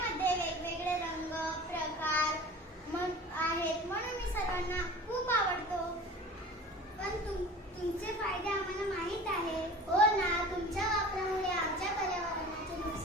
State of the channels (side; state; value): both; normal; correlation 0.39